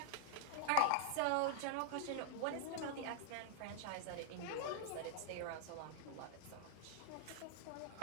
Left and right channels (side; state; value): both; different; correlation -0.01